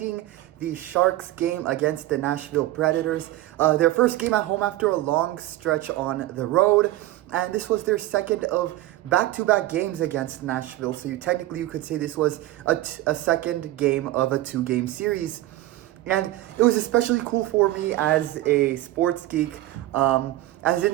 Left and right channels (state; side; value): quieter; left; 15.9 dB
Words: the Sharks game against the Nashville Predators. Their first game at home after a long stretch on the road. And this was their second of back-to-back games against Nashville. So you could say this was a second game of a two-game series. And it was especially cool for me as a sports geek. As in